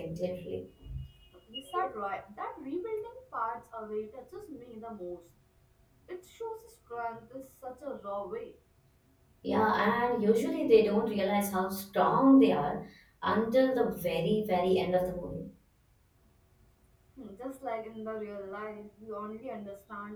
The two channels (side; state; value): both; identical; correlation 1.00